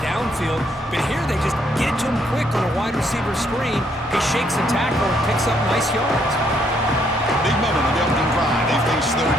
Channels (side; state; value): both; normal; correlation 0.71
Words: downfield, but here they just get it to him quick on a wide receiver screen. He shakes the tackle and picks up nice yards. Big moment on the opening drive. They face third